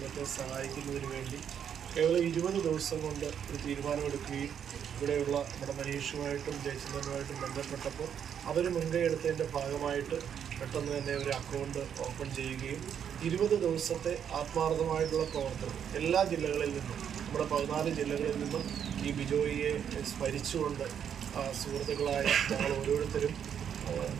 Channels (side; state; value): left; quieter; 8.5 dB